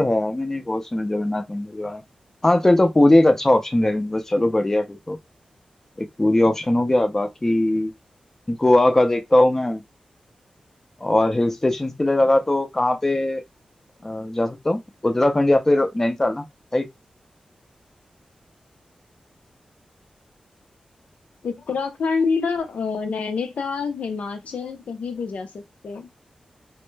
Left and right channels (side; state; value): both; normal; correlation 0.98